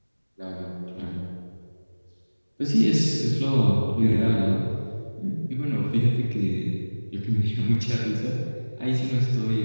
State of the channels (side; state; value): both; inverted; correlation -1.00